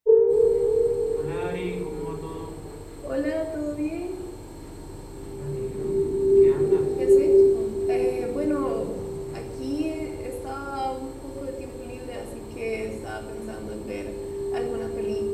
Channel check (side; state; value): both; identical; correlation 1.00